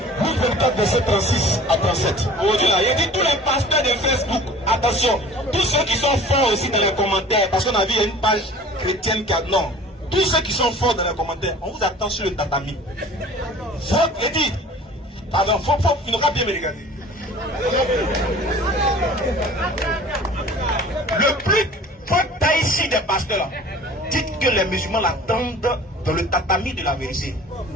Luc 24, verset 36 à 37. Aujourd'hui, là, il a dit tous les pasteurs de Facebook, attention, tous ceux qui sont forts aussi dans les commentaires, parce qu'on a vu il y a une page chrétienne qui a. Non, tous ceux qui sont forts dans les commentaires, on vous attend sur le tatami. Faut, il dit, pardon, il n'aura pas bien me regarder. Le plus fort ici des pasteurs là, dites que les musulmans l'attendent dans le tatami de la vérité.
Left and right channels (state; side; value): normal; both; correlation 0.45